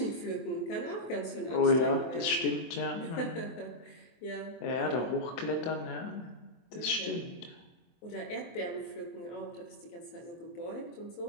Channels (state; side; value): late; right; 24 ms